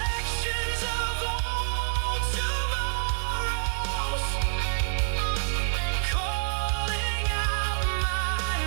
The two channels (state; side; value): silent; left; 58 dB below the other